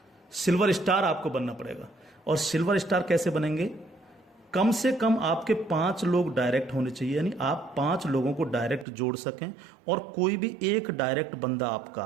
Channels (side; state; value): left; drops out; at 8.8 s